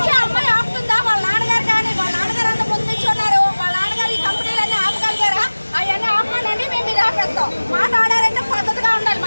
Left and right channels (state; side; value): inverted; both; correlation -1.00